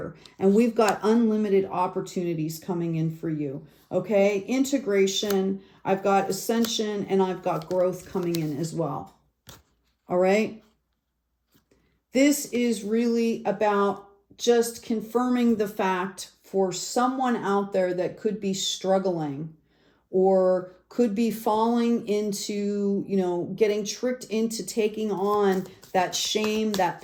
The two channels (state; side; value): identical; both; correlation 1.00